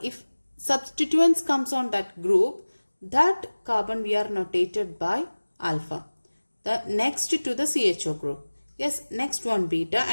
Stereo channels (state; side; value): inverted; both; correlation -1.00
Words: if substituents comes on that group, that carbon we are notated by alpha. The next to the CHO group. Yes, next one beta